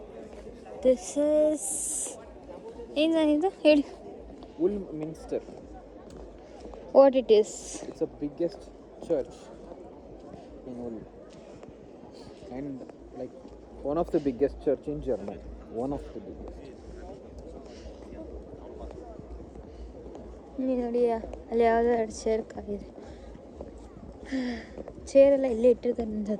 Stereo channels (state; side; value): identical; both; correlation 1.00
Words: ದಿಸ್ ಇಸ್ ಏನಿದು ಹೇಳಿ. Woolminster. What it is? It's the biggest church in Ulm. And like one of the biggest church in Germany. One of the biggest. ನೋಡಿ ಅಲ್ಲಿ ಯಾವುದೋ 2 ಚೇರ್ ಕಾಗಿದೆ. ಚೇರೆಲ್ಲ ಇಲ್ಲೇ ಇಟ್ಟಿರ್ತಾರೆ